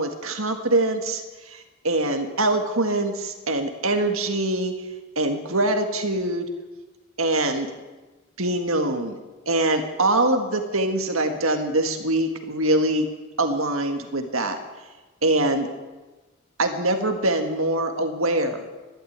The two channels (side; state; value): both; normal; correlation -0.19